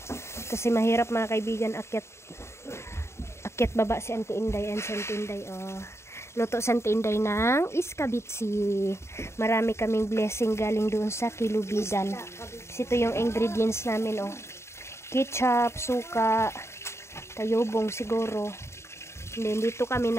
Kasi mahirap mga kaibigan akyat baba si Auntie Inday and si Auntie Inday. Luto sa Auntie Inday ng iskabitsi. Marami kaming blessing galing doon sa Kilubidan. Ito yung ingredients namin, ketchup, suka, tayobong siguro. And then dito kami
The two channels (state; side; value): late; right; 0.13 ms